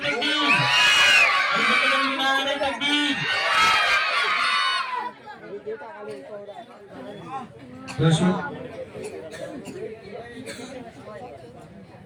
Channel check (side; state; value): both; identical; correlation 1.00